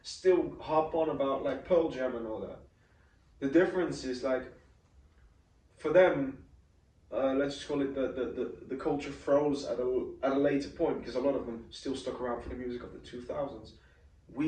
still harp on about like Pearl Jam and all that? The difference is like, for them, let's just call it the culture froze at a later point because a lot of them still stuck around for the music of the 2000s.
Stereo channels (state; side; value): identical; both; correlation 1.00